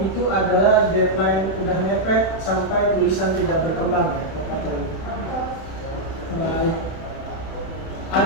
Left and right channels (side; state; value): right; late; 31 ms